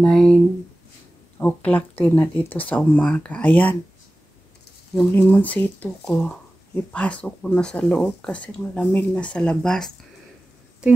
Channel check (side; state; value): both; normal; correlation 0.96